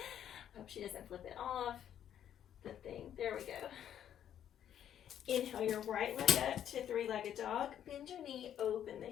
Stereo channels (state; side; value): quieter; right; 10.1 dB